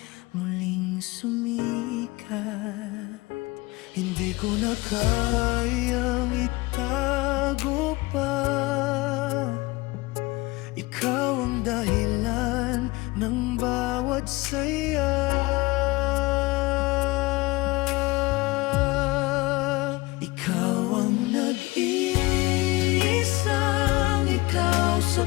muling sumikat. Hindi ko na kayang itago pa. Ikaw ang dahilan ng bawat saya. Ikaw ang nag-iisang ikaw sa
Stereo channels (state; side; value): quieter; right; 22.3 dB